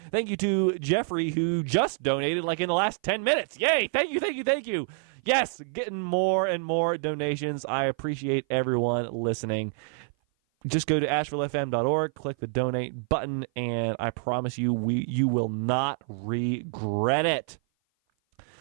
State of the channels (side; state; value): left; silent; 56 dB below the other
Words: Thank you to Jeffrey, who just donated like in the last 10 minutes. Yay! Thank you. Yes, getting more and more donations. I appreciate everyone listening. Just go to ashevillefm.org, click the donate button, and I promise you, you will not regret it.